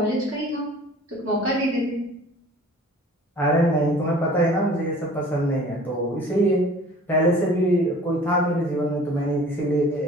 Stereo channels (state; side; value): normal; both; correlation 0.47